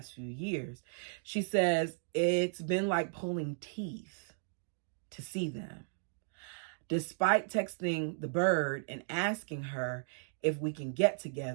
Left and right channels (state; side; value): silent; left; digital silence